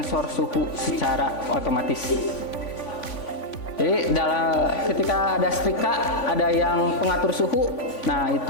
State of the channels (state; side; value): late; right; 3.5 ms